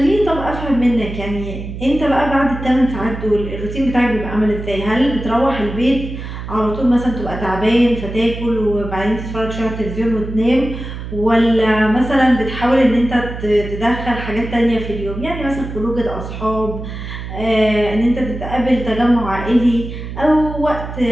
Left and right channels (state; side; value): noise; right; hum, 8 dB below the sound